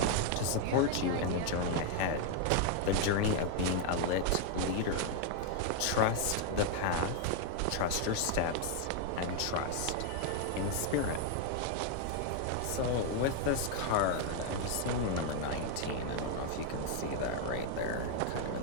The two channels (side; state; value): both; different; correlation 0.00